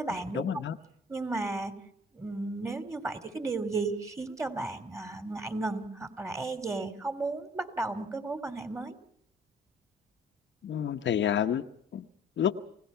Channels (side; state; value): both; normal; correlation 0.53